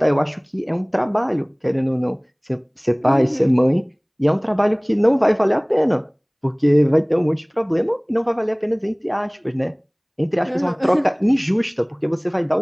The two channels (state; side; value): identical; both; correlation 1.00